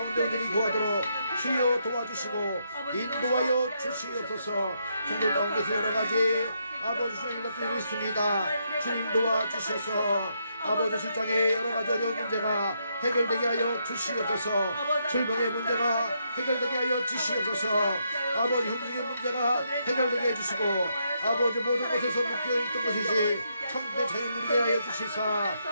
우리를 도와도록 주여 도와주시고 인도하여 주시옵소서. 성도 가운데서 여러가지 아버지 주님 일들이 있습니다. 주님 도와주셔서 아버지 실장의 여러가지 어려운 문제가 해결되게 하여 주시옵소서. 질병의 문제가 해결되게 하여 주시옵소서. 아버지 형제의 문제가 해결되게 해주시고 아버지 모든 것에서 묶여있던 것이지 참된 자유 누리게 하여 주시사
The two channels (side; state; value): both; inverted; correlation -0.78